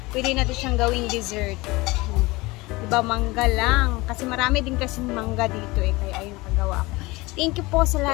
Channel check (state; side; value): quieter; right; 22.3 dB